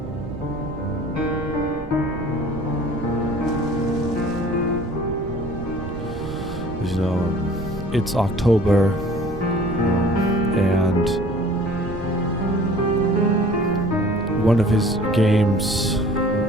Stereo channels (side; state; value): both; normal; correlation 0.49